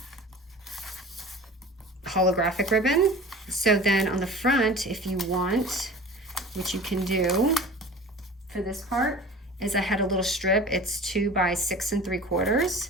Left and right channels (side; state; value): both; normal; correlation 0.40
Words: holographic ribbon. So then on the front, if you want, what you can do for this part is I had a little strip. It's 2 by 6 3/4.